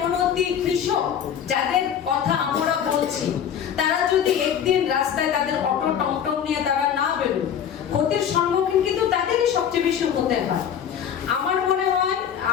কৃষক যাদের কথা আমরা বলছি, তারা যদি একদিন রাস্তায় তাদের অটো টমটম নিয়ে তারা না বেরোয়, ক্ষতির সম্মুখীন কিন্তু তাদেরই সবচেয়ে বেশি হতে হয়। আমার মনে হয়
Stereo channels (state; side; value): quieter; right; 8.7 dB